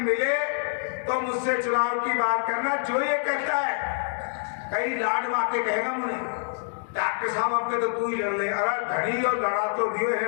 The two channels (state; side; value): silent; right; digital silence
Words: मिले तो मुझसे चुनाव की बात करना। जो ये कहता है कई लाड वाके कहेगा मुझे, डॉक्टर साहब अपने तो तू ही लड़ ले, अरे धनी और लड़ा तो दियो है,